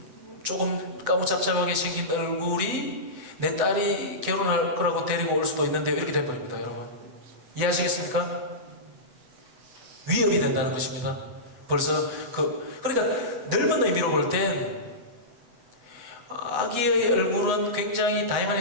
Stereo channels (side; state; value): left; late; 7.9 ms